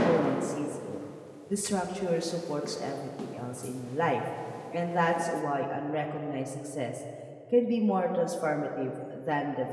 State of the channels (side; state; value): both; identical; correlation 1.00